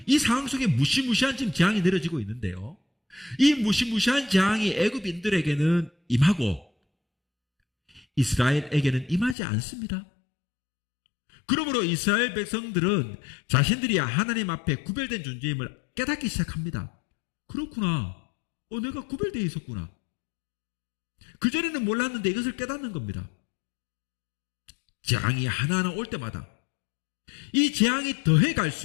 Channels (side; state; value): right; drops out; at 9.3 s